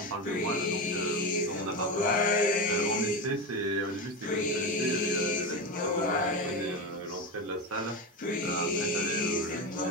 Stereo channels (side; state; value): both; normal; correlation 0.18